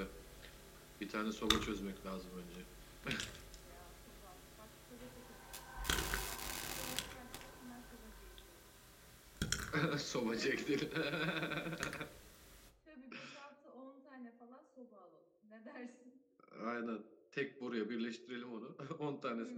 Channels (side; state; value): both; identical; correlation 1.00